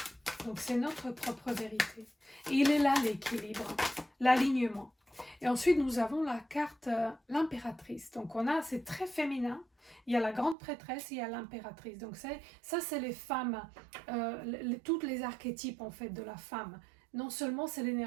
Donc c'est notre propre vérité. Et il est là l'équilibre, l'alignement. Et ensuite nous avons la carte l'impératrice. Donc c'est très féminin. Il y a la grande prêtresse, il y a l'impératrice. Donc ça c'est les femmes, toutes les archétypes en fait de la femme. Non seulement c'est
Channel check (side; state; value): left; drops out; at 10.6 s